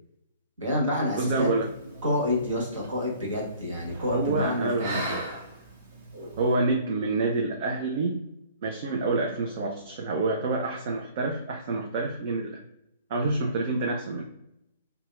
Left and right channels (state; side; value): inverted; both; correlation -0.52